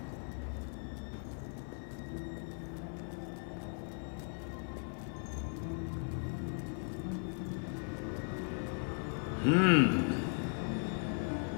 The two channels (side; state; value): right; silent; 53 dB below the other